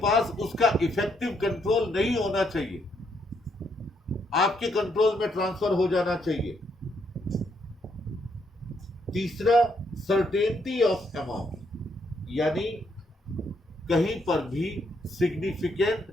उसका इफेक्टिव कंट्रोल नहीं होना चाहिए, आपके कंट्रोल में ट्रांसफर हो जाना चाहिए। तीसरा, सर्टेनिटी ऑफ अमाउंट, यानी कहीं पर भी सिग्निफिकेंट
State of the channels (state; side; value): normal; both; correlation 0.74